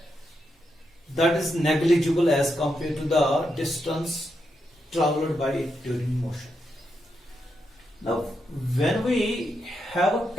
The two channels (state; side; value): normal; both; correlation 0.83